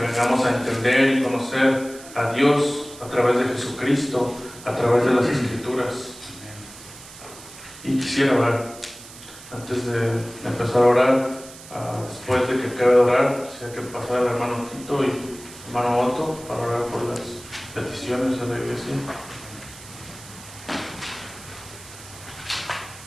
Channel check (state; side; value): noise; right; hiss, 17 dB below the sound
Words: a entender y conocer a Dios a través de Jesucristo, a través de las Escrituras. Y quisiera orar. Antes de empezar a orar, después de que acabe de orar, quisiera que pasara el hermano Tito y el hermano Otto para orar por las peticiones de la iglesia.